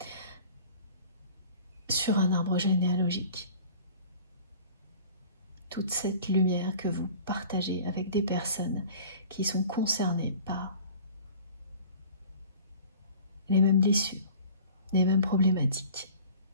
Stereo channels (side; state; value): both; inverted; correlation -0.45